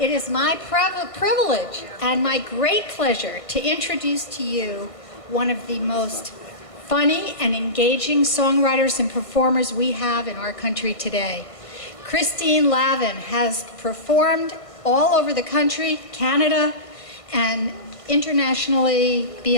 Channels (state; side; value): late; right; 1.5 ms